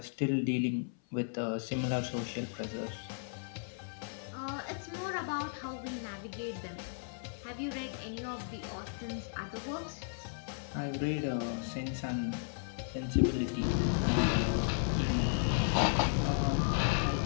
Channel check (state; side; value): silent; right; 55 dB below the other